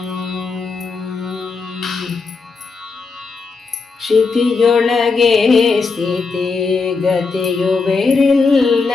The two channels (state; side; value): quieter; right; 4.5 dB